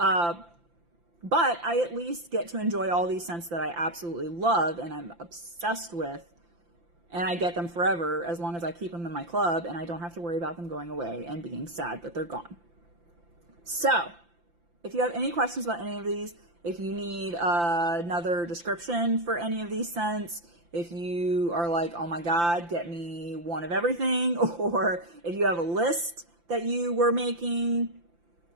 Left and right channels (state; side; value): late; left; 5.8 ms